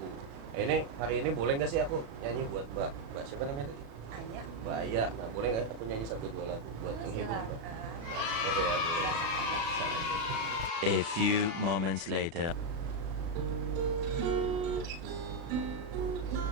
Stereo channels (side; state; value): left; late; 36 ms